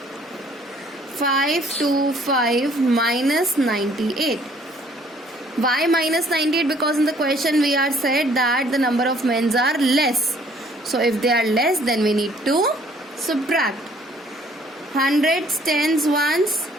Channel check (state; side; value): normal; both; correlation 0.60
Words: 525 minus 98. Why minus 98? Because in the question we are said that the number of men are less. So if they are less, then we need to subtract. Hundreds, tens, ones.